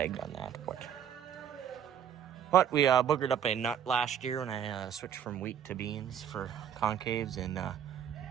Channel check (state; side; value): quieter; left; 8.9 dB